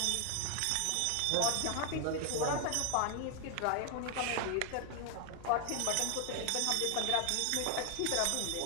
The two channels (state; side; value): different; both; correlation 0.00